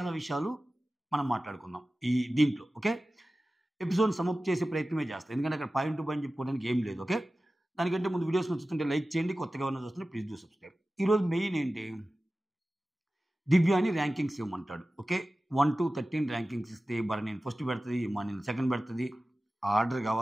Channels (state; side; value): normal; both; correlation 0.96